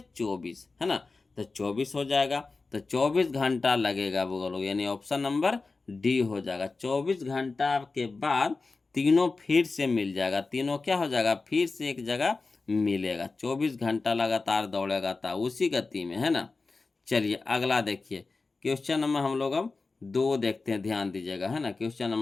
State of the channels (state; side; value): quieter; right; 3.9 dB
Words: 24, है ना। तो 24 हो जाएगा। तो 24 घंटा लगेगा बोलो, यानी ऑप्शन नंबर डी हो जाएगा। 24 घंटा के बाद तीनों फिर से मिल जाएगा, तीनों क्या हो जाएगा? फिर से एक जगह मिलेगा। 24 घंटा लगातार दौड़ेगा था उसी गति में, है ना। चलिए अगला देखिए, क्वेश्चन नंबर हम लोग अब 2 देखते हैं, ध्यान दीजिएगा, है ना। क्वेश्चन